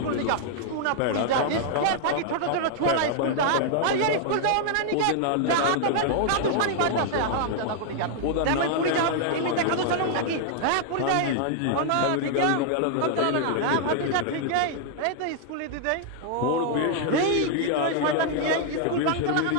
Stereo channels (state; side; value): different; both; correlation -0.01